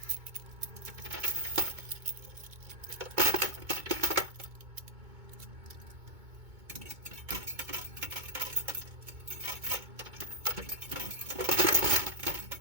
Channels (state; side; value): late; left; 2.2 ms